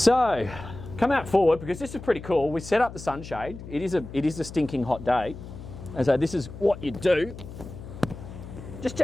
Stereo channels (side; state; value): left; noise; hum, 13 dB below the sound